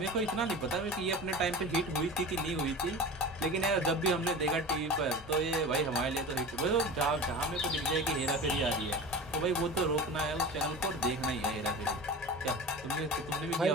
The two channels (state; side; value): normal; both; correlation 0.32